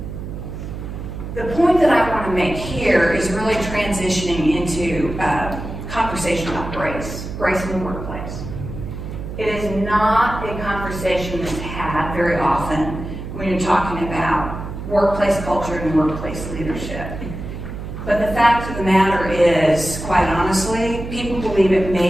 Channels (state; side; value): noise; right; hum, 8 dB below the sound